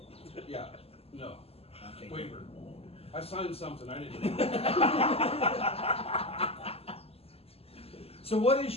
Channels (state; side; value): late; right; 0.29 ms